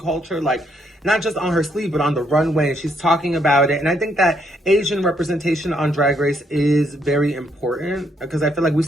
like not just on her sleeve, but on the runway. And she's talking about it. And I think that Asian representation on Drag Race is very important because I feel like we've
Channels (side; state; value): both; normal; correlation 0.73